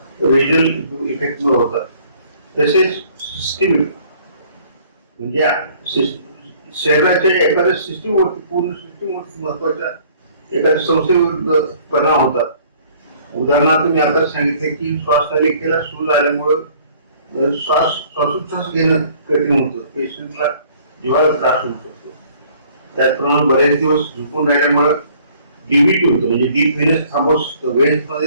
रिजनल इफेक्टमुळे होतात. तसेच सिस्टमिक म्हणजे शरीराच्या एखाद्या सिस्टीमवरती, पूर्ण सिस्टीमवरती महत्वाच्या एखाद्या संस्थेविरुद्ध परिणाम होतात. उदाहरणार्थ मी आता सांगितले की श्वासनलिकेला सूज आल्यामुळं श्वासोच्छ्वास घेणं कठीण होतं, पेशंटला जीवाला त्रास होऊ शकतो. त्याचप्रमाणे बरेच दिवस झोपून राहिल्यामुळं डीव्हीटी होतं, म्हणजे डीप व्हेनस थ्रोम्बोसिस होतं, व्हेन्स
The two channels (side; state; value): both; inverted; correlation -0.57